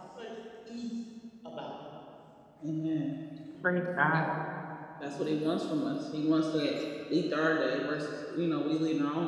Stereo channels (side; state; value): both; identical; correlation 1.00